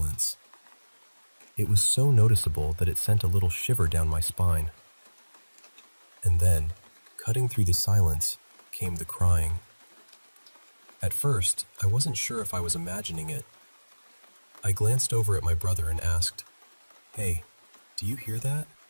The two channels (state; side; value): inverted; both; correlation -1.00